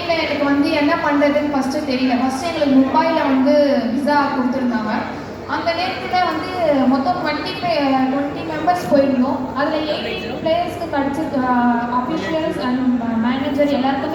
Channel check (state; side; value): identical; both; correlation 1.00